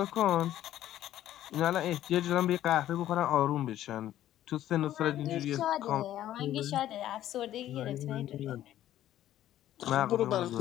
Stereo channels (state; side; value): quieter; right; 12.7 dB